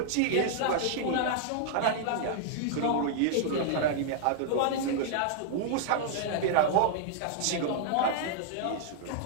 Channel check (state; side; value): different; both; correlation -0.01